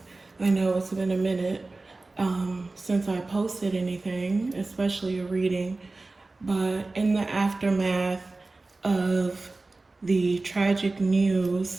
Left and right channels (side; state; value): left; quieter; 3.3 dB